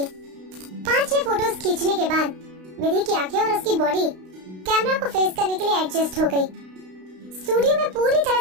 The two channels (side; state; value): left; late; 32 ms